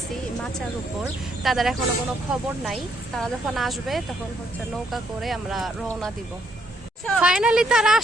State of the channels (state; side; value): normal; both; correlation 0.72